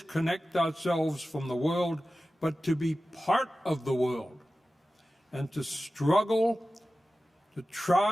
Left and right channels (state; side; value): normal; both; correlation 0.95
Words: ourselves from the world, but to be part of the world and to struggle to